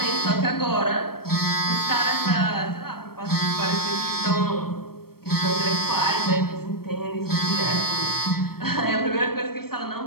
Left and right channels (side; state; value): right; late; 0.94 ms